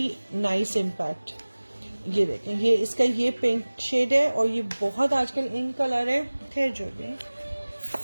nice impact. ये देखें, ये इसका ये पिंक शेड है, और ये बहुत आजकल इन कलर है। खैर जो भी,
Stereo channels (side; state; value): both; inverted; correlation -1.00